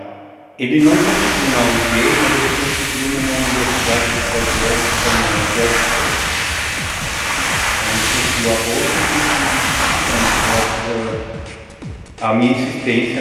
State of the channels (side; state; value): both; identical; correlation 1.00